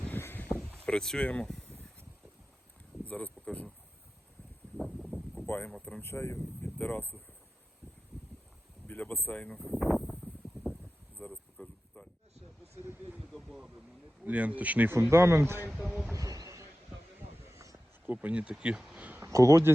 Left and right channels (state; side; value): normal; both; correlation 0.95